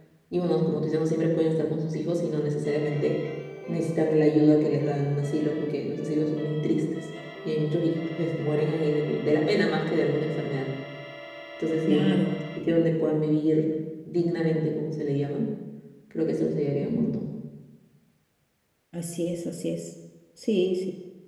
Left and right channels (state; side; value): identical; both; correlation 1.00